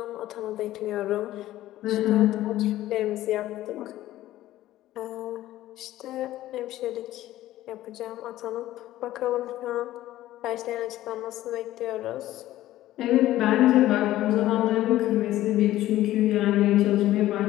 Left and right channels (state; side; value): quieter; right; 14.7 dB